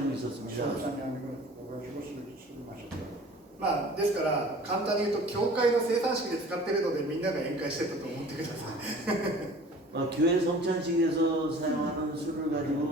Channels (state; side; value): normal; both; correlation 0.46